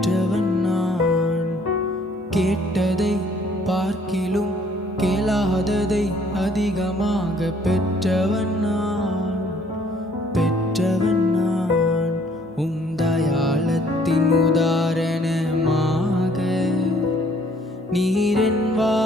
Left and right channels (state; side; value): normal; both; correlation 0.61